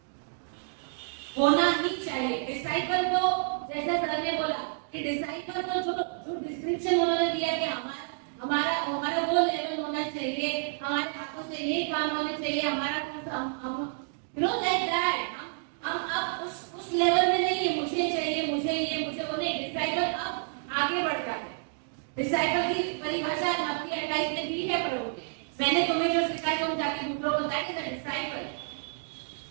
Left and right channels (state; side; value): silent; left; digital silence